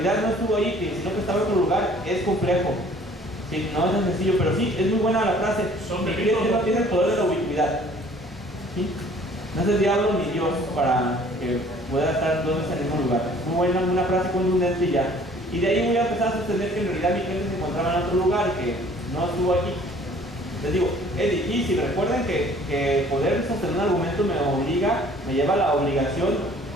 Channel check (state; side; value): normal; both; correlation 0.54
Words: no estuvo ahí, sino que estaba en otro lugar, es complejo. Sí, no es tan sencillo, pero sí, es muy buena la frase. Mi cliente no tiene el poder de la ubicuidad. ¿Sí? No es el diablo ni Dios para que pueda estar 2 veces en el mismo lugar. Muy buena, una frase contundente y ya. Y de ahí voy a empezar a sostener que en realidad mi cliente se encontraba en otro lugar y que no estuvo aquí. Les digo, es difícil. Recuerden que poder sostener un argumento me lleva a la obligación